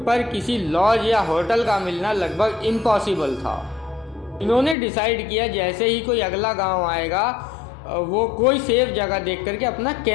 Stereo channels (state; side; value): drops out; right; at 4.8 s